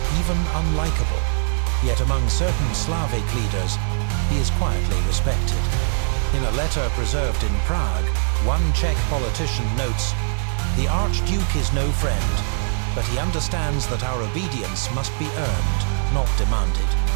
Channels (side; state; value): left; silent; digital silence